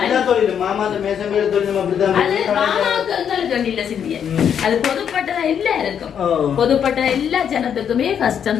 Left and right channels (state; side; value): quieter; right; 8.2 dB